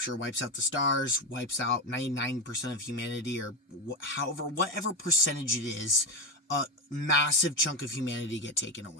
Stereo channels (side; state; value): both; normal; correlation 0.14